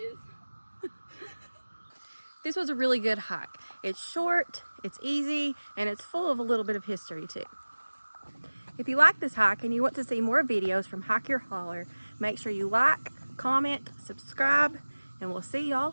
This was a really good hike. It's short, it's easy, and it's full of a little bit of history too. If you like this hike and you want to see more videos from Hike Your Holler, make sure you like, comment, subscribe, and we'll see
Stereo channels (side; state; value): both; inverted; correlation -1.00